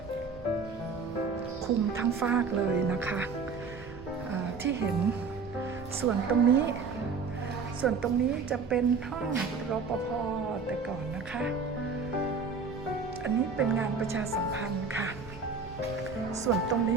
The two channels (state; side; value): quieter; left; 4.9 dB